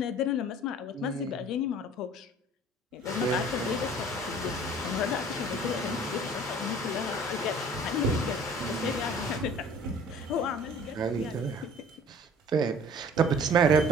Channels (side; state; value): both; normal; correlation 0.48